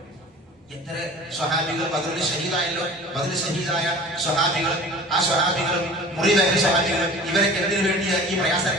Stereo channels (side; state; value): both; normal; correlation 0.41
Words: എത്ര സ്വഹാബികൾ ബദറിൽ ഷഹീദായല്ലോ. ബദറിൽ ഷഹീദായ സ്വഹാബികൾ, ആ സ്വഹാബികളും മുറിവേറ്റ സ്വഹാബികളും, ഇവരൊക്കെ എന്തിനു വേണ്ടിയാണ് ഈ പ്രയാസം